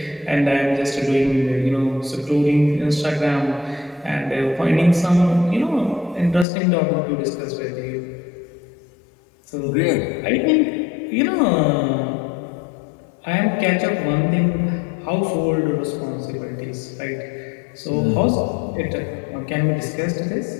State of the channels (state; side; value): drops out; right; at 6.5 s